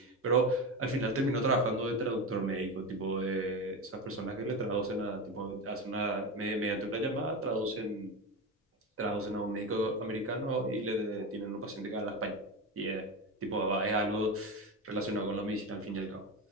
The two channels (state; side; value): normal; both; correlation 0.20